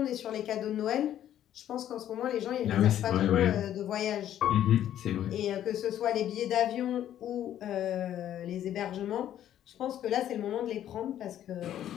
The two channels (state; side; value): quieter; right; 11.3 dB